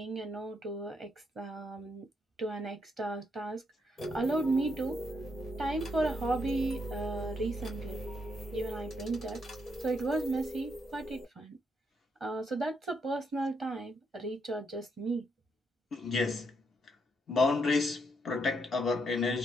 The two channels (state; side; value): normal; both; correlation 0.77